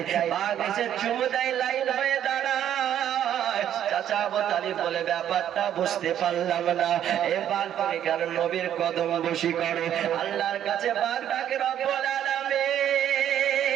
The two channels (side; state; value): left; quieter; 10.5 dB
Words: বাঘ এসে চুমু দেয়, লাইন হয়ে দাঁড়ায়। চাচা আবু তালিব বলে, ব্যাপারটা বুঝতে পারলাম না, এ বাঘ তুমি কেন নবীর কদম বসি করে? আল্লাহর কাছে বাঘ ডাকে, রব্বুল আলামিন